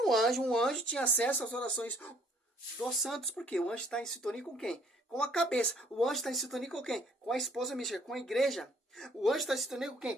um anjo tinha acesso às orações dos santos. Por quê? O anjo está em sintonia com quem? Com a cabeça. O anjo está em sintonia com quem? Com a esposa mística, com a igreja. O anjo está em sintonia com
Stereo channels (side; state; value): both; normal; correlation 0.62